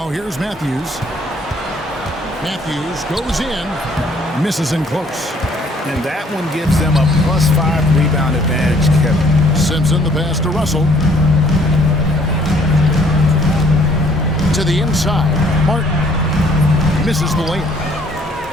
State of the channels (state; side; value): normal; both; correlation 0.61